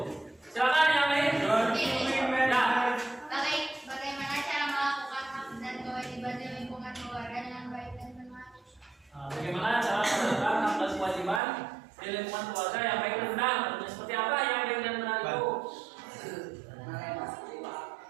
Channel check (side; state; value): left; drops out; at 11.4 s